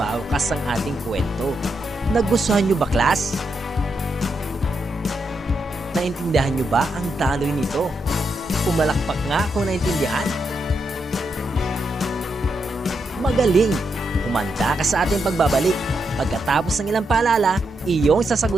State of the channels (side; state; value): both; normal; correlation 0.83